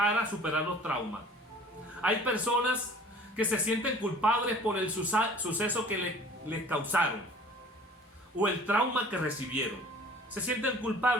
superar los traumas. Hay personas que se sienten culpables por el suceso que les causaron o el trauma que recibieron. Se sienten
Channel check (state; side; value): normal; both; correlation 0.48